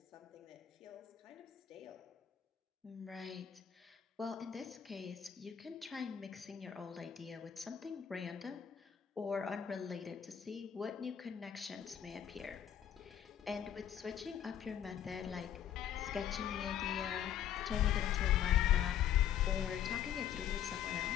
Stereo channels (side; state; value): right; quieter; 9.9 dB